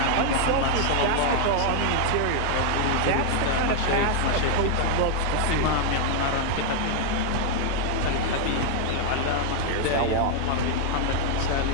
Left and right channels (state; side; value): different; both; correlation 0.00